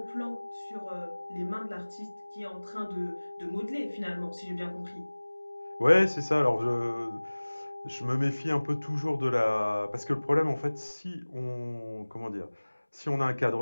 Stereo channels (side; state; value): both; inverted; correlation -1.00